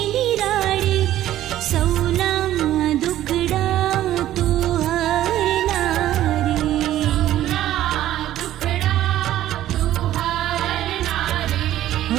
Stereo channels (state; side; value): quieter; left; 13.2 dB